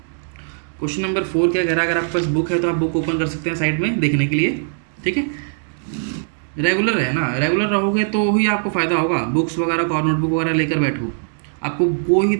क्वेश्चन नंबर 4 क्या कह रहा है? अगर आपके पास बुक है तो आप बुक ओपन कर सकते हैं साइड में देखने के लिए, ठीक है? रेगुलर है ना, रेगुलर रहोगे तो ही आपको फ़ायदा होगा। बुक्स वगैरह और नोटबुक वगैरह लेकर बैठो, आपको कोई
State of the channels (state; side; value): silent; left; digital silence